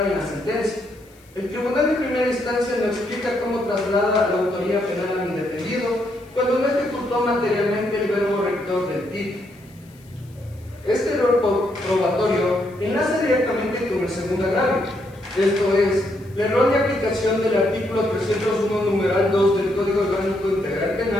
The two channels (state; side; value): noise; left; hiss, 29 dB below the sound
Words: en la sentencia. El tribunal de primera instancia no explica cómo traslada la autoría penal a mi defendido cuando no ejecutó materialmente el verbo rector del título. Este error probatorio enlaza directamente con el segundo agravio, esto es, la errónea aplicación del artículo 301 numeral 2 del Código Orgánico Integral